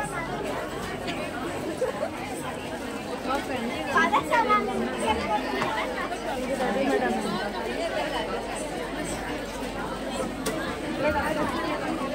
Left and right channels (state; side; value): identical; both; correlation 1.00